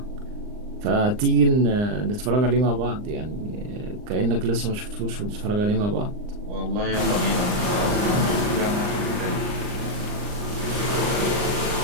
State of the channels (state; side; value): late; left; 39 ms